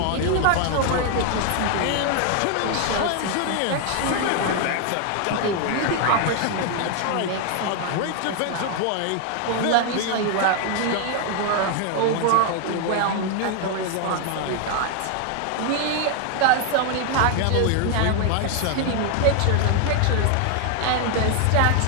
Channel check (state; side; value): different; both; correlation 0.00